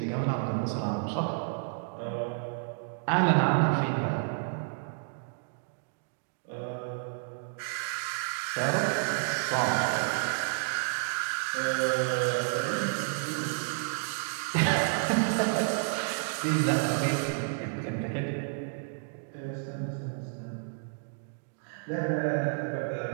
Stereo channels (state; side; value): silent; left; digital silence